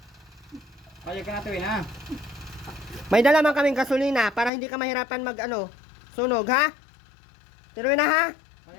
Kaya ka na tuwin ha. May dala man kaming gasolina para hindi ka mahirapan mag ano, Sunog, ha? Ate Rowena, ha?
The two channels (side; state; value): right; drops out; at 4.5 s